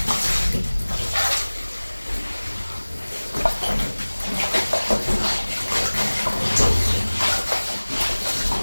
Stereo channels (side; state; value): both; inverted; correlation -1.00